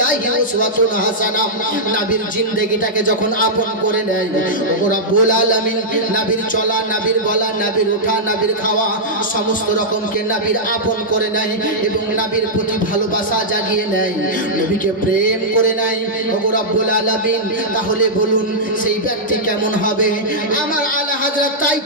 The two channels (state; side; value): normal; both; correlation -0.10